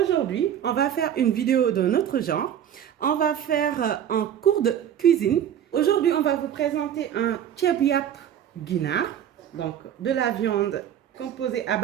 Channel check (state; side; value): quieter; left; 9.8 dB